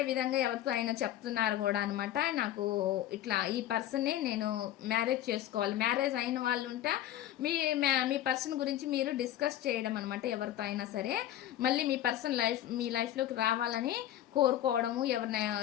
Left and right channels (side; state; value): right; quieter; 12.7 dB